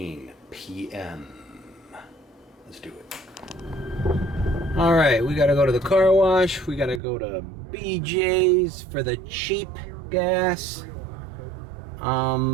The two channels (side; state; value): left; drops out; at 7.0 s